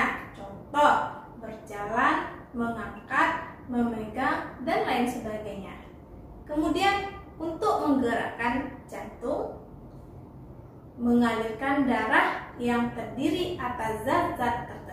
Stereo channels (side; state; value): both; identical; correlation 1.00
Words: Contoh, berjalan, mengangkat, memegang, dan lain sebagainya. Kemudian untuk menggerakkan jantung, mengalirkan darah yang terdiri atas zat-zat